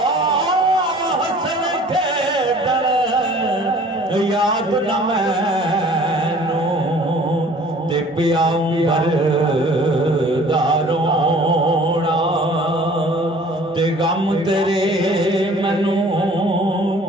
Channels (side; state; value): both; normal; correlation 0.50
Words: याद न मैनू ते प्यार दारोना ते गम तेरे मैनू